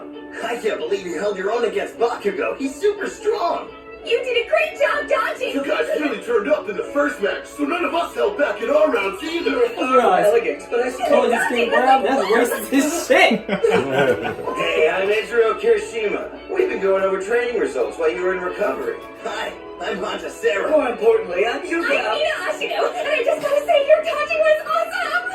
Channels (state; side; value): identical; both; correlation 1.00